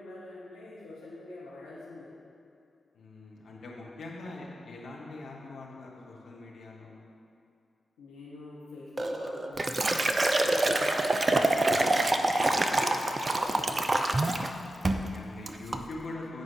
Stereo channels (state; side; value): normal; both; correlation 0.93